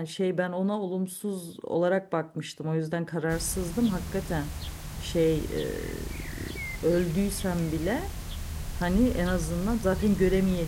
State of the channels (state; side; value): identical; both; correlation 1.00